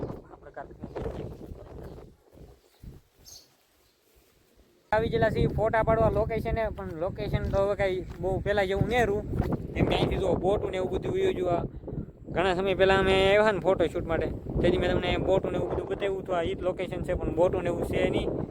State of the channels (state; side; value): identical; both; correlation 1.00